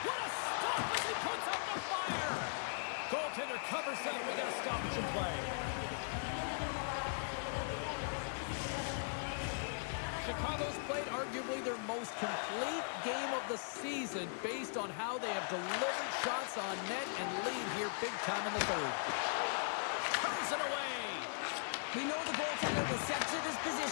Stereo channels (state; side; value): silent; right; digital silence